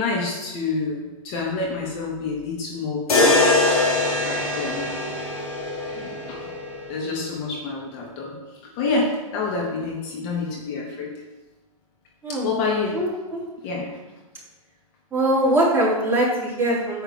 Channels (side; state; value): both; normal; correlation 0.05